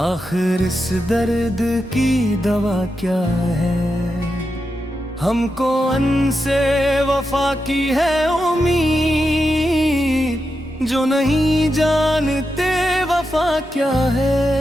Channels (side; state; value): both; normal; correlation 0.87